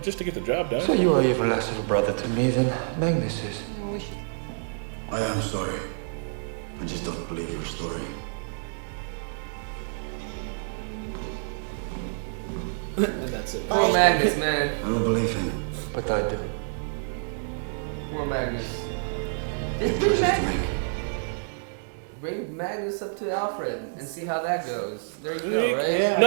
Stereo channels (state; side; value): silent; left; digital silence